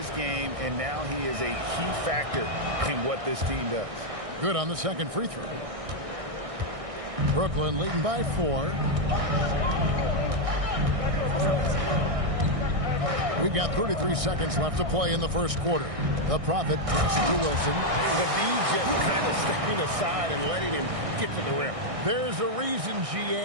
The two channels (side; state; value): left; late; 1.6 ms